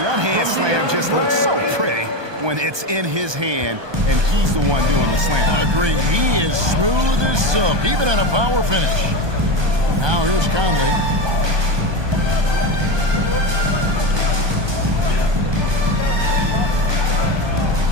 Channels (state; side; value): late; left; 1.2 ms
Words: one-hand slam just looks so pretty when it's in his hand and he's the one doing the slam. Agreed. He is smooth as silk, even at a power finish. Now here's Conley.